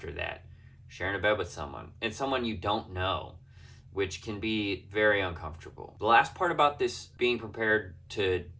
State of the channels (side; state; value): both; identical; correlation 1.00